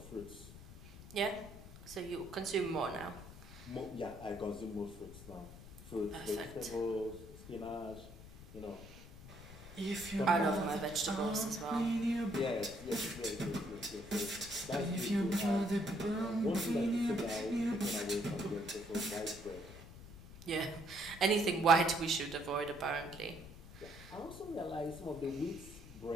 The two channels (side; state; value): left; noise; rumble, 16 dB below the sound